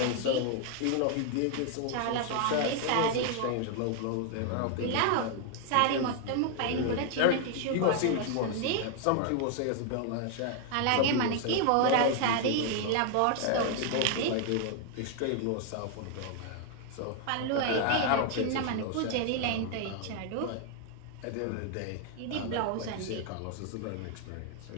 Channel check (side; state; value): both; different; correlation 0.00